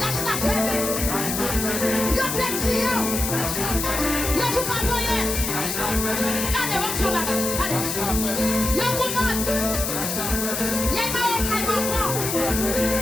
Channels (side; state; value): left; noise; hiss, 3 dB below the sound